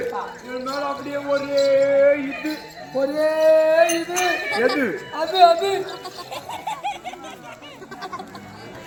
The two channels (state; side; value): identical; both; correlation 1.00